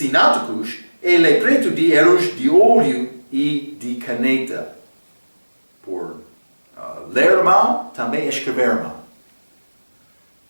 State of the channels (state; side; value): inverted; both; correlation -1.00